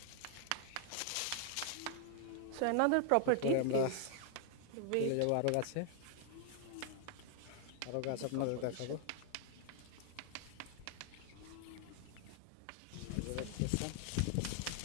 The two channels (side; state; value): both; different; correlation 0.00